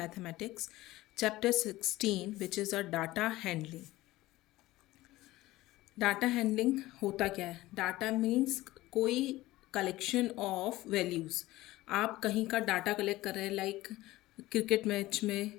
chapter 16 which is a data handling. Data handling होता क्या है? Data means कोई collection of values. आप कहीं का डाटा कलेक्ट कर रहे हैं, लाइक क्रिकेट मैच में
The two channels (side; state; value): right; quieter; 17.6 dB